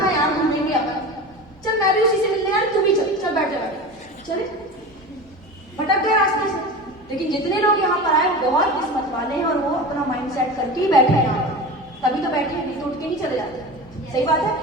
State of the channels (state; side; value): normal; both; correlation 0.30